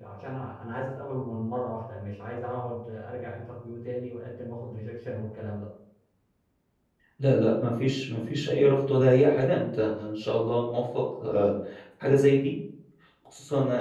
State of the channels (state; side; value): identical; both; correlation 1.00